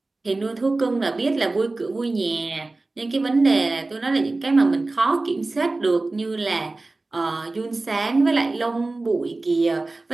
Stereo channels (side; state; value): left; quieter; 3.2 dB